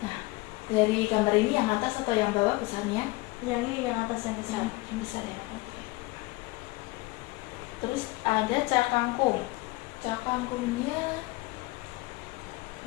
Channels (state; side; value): quieter; right; 21.9 dB